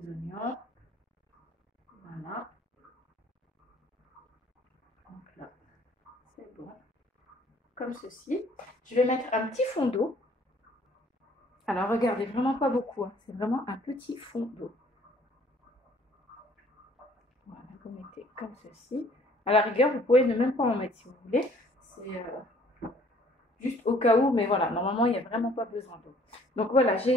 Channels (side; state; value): both; normal; correlation 0.58